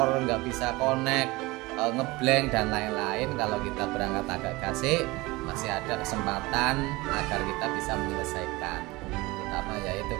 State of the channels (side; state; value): left; quieter; 22.1 dB